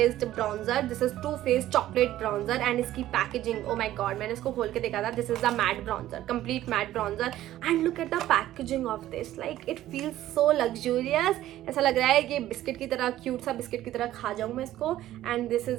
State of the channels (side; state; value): left; quieter; 13.8 dB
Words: bronzer. This is Too Faced chocolate bronzer. And इसकी packaging, oh my god, मैंने इसको खोल के देखा था. This is the matte bronzer, complete matte bronzer. And look at the packaging of this. Like it feels so luxurious. ऐसा लग रहा है कि बिस्किट की तरह, क्यूट सा बिस्किट की तरह खा जाऊँ मैं इसको. And this